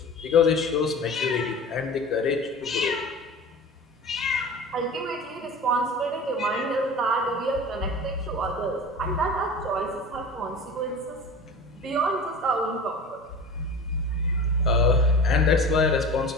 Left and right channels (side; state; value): both; normal; correlation 0.35